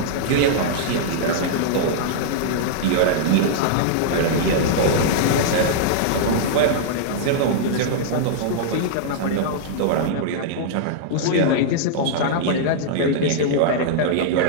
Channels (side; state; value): both; different; correlation -0.01